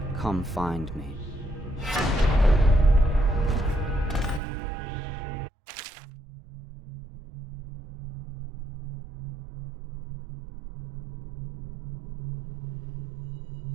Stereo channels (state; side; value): drops out; left; at 4.4 s